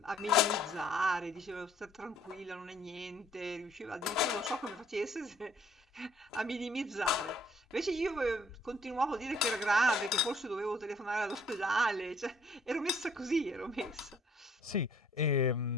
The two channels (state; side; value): normal; both; correlation 0.61